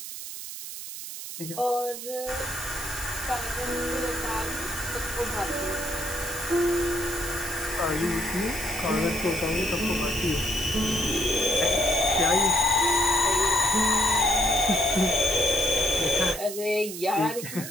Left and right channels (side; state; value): right; noise; hiss, 9 dB below the sound